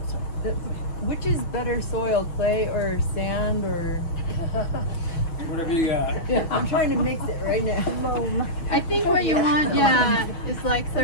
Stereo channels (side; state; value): right; late; 6.2 ms